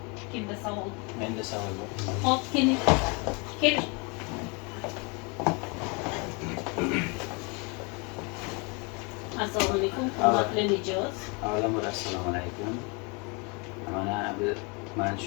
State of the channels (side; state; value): right; quieter; 31.1 dB